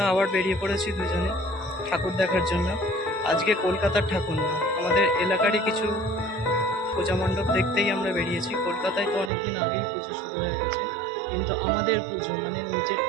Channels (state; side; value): drops out; left; at 9.3 s